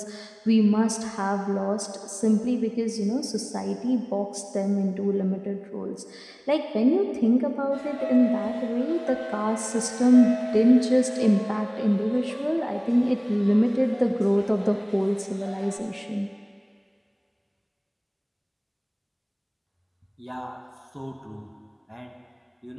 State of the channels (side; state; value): both; identical; correlation 1.00